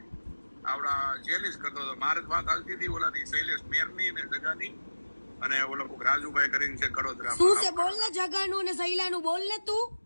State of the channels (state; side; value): inverted; both; correlation -1.00